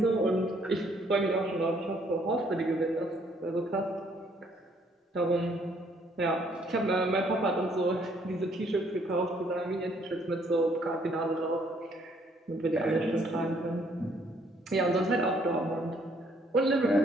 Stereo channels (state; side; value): normal; both; correlation 0.66